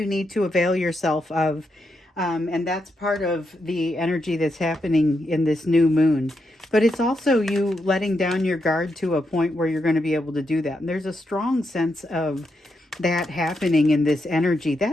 need to avail yourself of. And that's part of the energy that's happening in this new moon. But it's also you letting down your guard to a point where you're going to be able to do that. And there's a strong sense of that happening in this energy.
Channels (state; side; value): normal; both; correlation 0.83